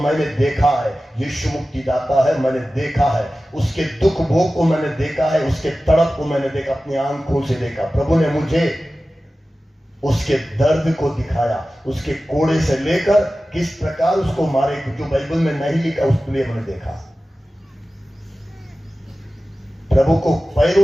देखा है, यीशु मुक्तिदाता है, मैंने देखा है, उसके दुख भोग को मैंने देखा है, उसके तड़प को मैंने देखा, अपनी आंखों से देखा। प्रभु ने मुझे उसके दर्द को दिखाया, उसके कोड़े से लेकर किस प्रकार उसको मारे, जो बाइबल में नहीं लिखा उसके लिए मैंने देखा। प्रभु को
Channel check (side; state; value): both; normal; correlation 0.95